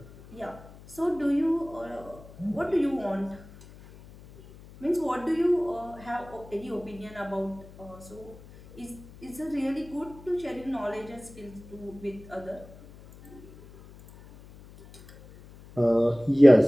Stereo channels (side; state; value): left; noise; hum, 20 dB below the sound